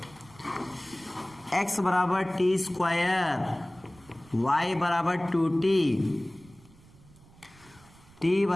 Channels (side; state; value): right; noise; rumble, 25 dB below the sound